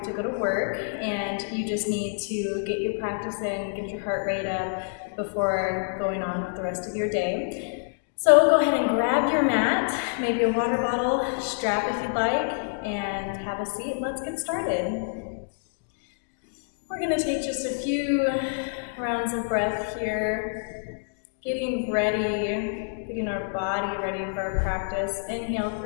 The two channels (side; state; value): right; silent; digital silence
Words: to go to work, and you just need to get your practice in, get your heart rate up before going on with the rest of your day. So go ahead and grab your mat, maybe a water bottle, strap if you'd like, and have a seat. Let's get started. We're going to take just a few rounds of breath here, getting ready, getting our body ready for our practice. Inhale